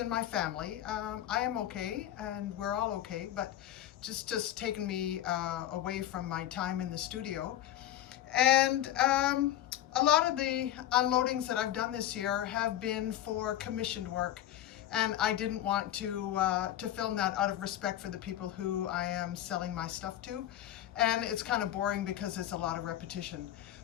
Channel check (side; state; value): right; quieter; 12.5 dB